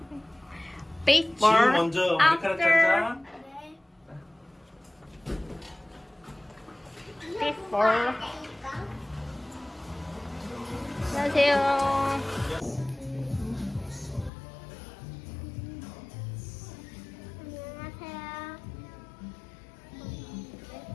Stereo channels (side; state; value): right; drops out; at 14.3 s